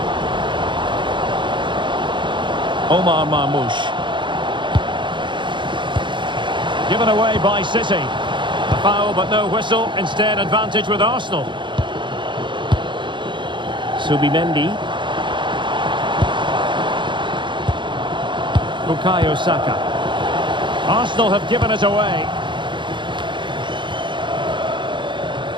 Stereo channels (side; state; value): left; late; 0.23 ms